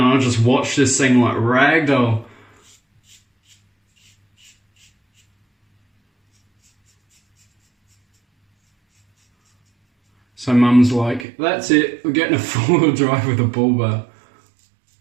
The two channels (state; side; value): drops out; left; at 11.2 s